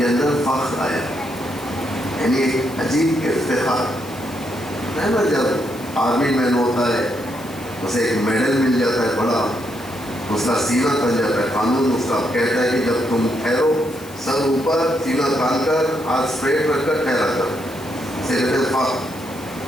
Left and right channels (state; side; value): noise; left; hiss, 20 dB below the sound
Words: اندر فخر آیا، یعنی ایک عجیب افتخار ہے نا۔ جب آرمی مین ہوتا ہے اسے ایک میڈل مل جاتا ہے بڑا، اس کا سینہ تن جاتا ہے، قانون اس کا کہتا ہے کہ جب تم ٹھہرو، سر اوپر، سینہ تان کر، ہاتھ اسٹریٹ رکھ کر ٹھہرا کر، اسے کہتے ہیں فخر،